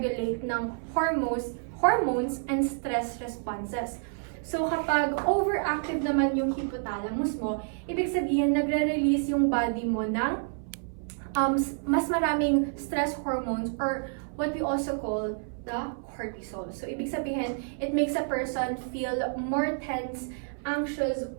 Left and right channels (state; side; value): silent; left; 59 dB below the other